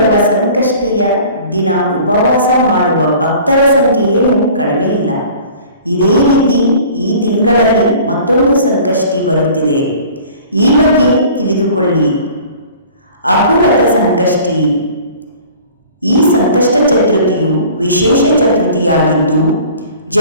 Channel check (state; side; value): inverted; both; correlation -0.47